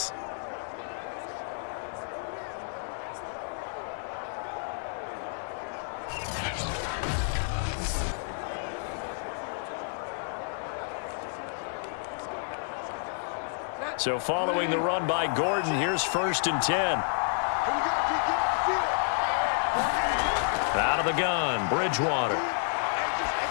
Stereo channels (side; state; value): right; silent; digital silence